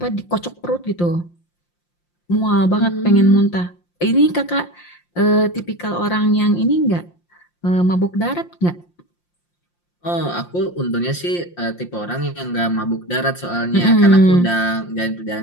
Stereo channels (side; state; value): right; late; 5.7 ms